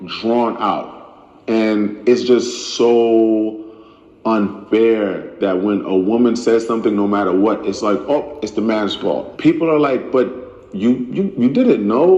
drawn out. And it's just so unfair that when a woman says something, no matter what, it's like, oh, it's the man's fault. People are like, but you didn't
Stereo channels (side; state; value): both; identical; correlation 1.00